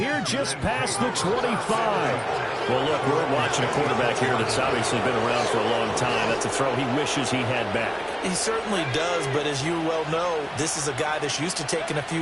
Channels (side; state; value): both; identical; correlation 1.00